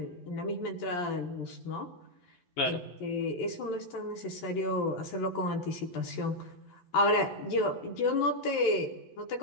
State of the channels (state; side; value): late; right; 11 ms